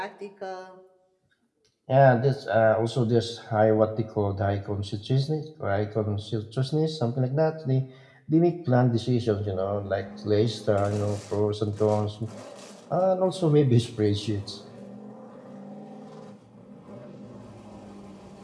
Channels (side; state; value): both; identical; correlation 1.00